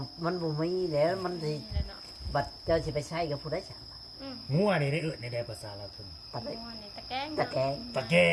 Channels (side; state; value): both; identical; correlation 1.00